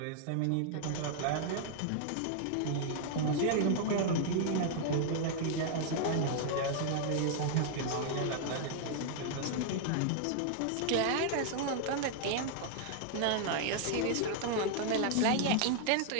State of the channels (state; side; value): different; both; correlation 0.00